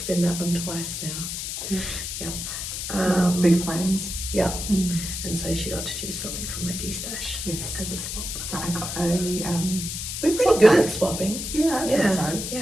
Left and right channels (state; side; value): noise; left; hiss, 5 dB below the sound